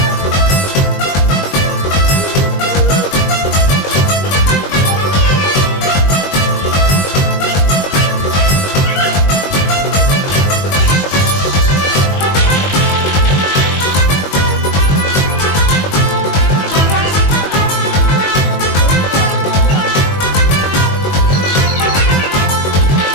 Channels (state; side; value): late; right; 21 ms